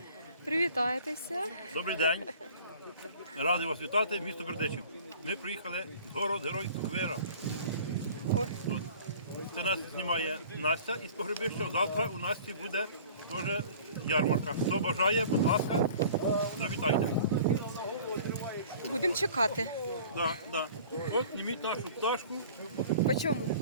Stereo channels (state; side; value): inverted; both; correlation -0.47